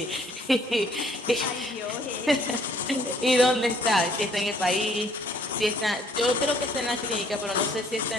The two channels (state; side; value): normal; both; correlation 0.61